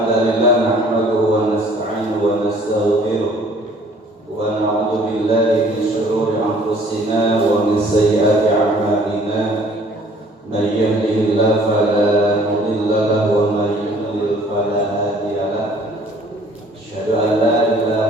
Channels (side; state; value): both; normal; correlation 0.56